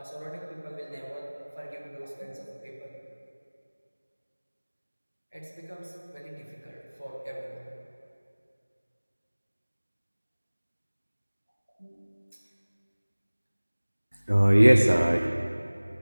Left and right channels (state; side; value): inverted; both; correlation -1.00